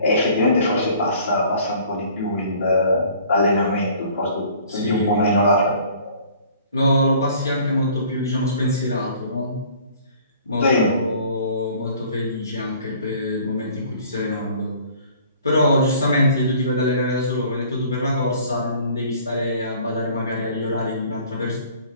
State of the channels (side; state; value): both; inverted; correlation -0.52